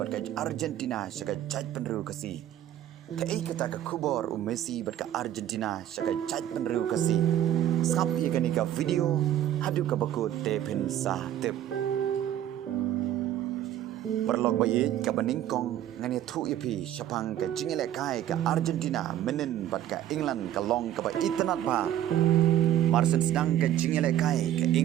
ka Argentina shaka chaj penru kasi ke ikata ka kubor Messi bat ka Argentina shaka chaj penru kasi sapi kani ka video hadu ka bakut te pin sa tip Perlok bayi ka beningkong ngani thu ipi syapang ka jingele kai ka Argentina menen bat ka England ka long ka ba itanat ba Marsen sedang ka jingele kai ka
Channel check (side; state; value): left; quieter; 11.9 dB